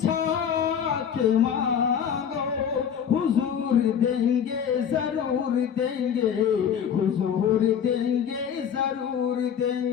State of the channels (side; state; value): right; quieter; 8.1 dB